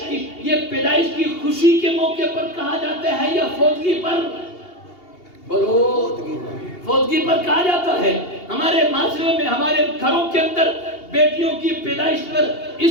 کی خوشی کے موقع پر کہا جاتا ہے یا فوتگی پر؟ بولو، فوتگی پر کہا جاتا ہے۔ ہمارے معاشرے میں، ہمارے گھروں کے اندر بیٹیوں کی پیدائش پر اس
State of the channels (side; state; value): right; late; 2.8 ms